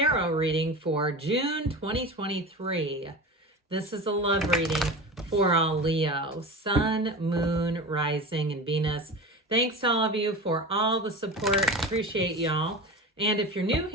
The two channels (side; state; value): both; normal; correlation 0.30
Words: reading for June 2023. This is a love reading for all Leo, Sun, Moon, Rising, and Venus. Thanks to all of you for all the support. Appreciate y'all. And if you're new